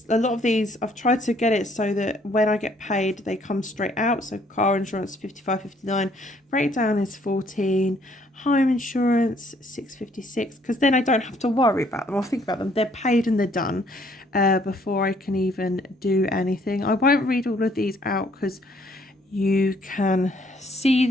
A lot of these, I've tried to get it so that when I get paid, they come straight out. So car insurance, 55.59. Breakdown is 14. Home insurance, 6.56. Because then I don't have to worry about them or think about them. They're paid and they're done before I can even do anything. I won't read all of these out because you can see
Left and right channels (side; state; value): both; normal; correlation 0.64